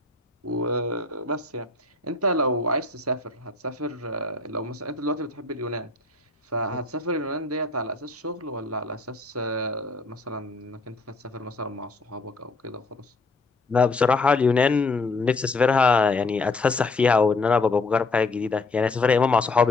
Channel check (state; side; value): quieter; right; 3.5 dB